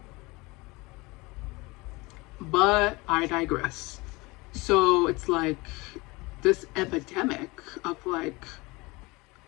But I digress. So it's like this epidemic of like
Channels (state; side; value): quieter; right; 23.9 dB